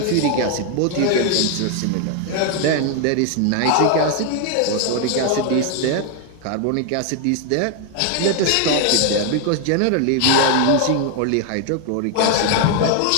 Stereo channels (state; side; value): different; both; correlation 0.01